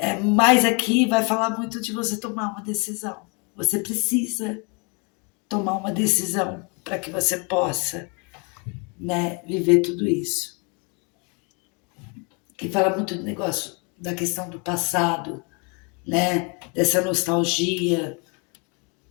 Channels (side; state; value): right; quieter; 33.5 dB